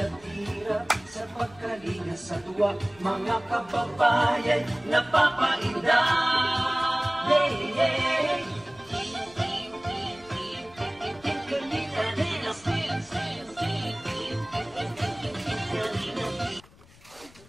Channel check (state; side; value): noise; left; rumble, 25 dB below the sound